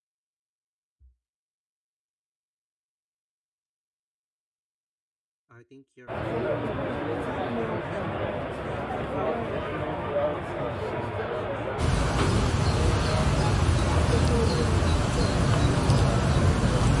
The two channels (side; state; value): both; identical; correlation 1.00